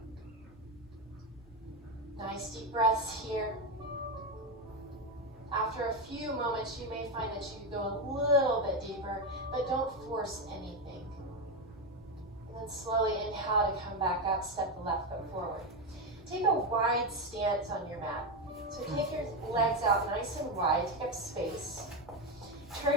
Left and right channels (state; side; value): normal; both; correlation 0.11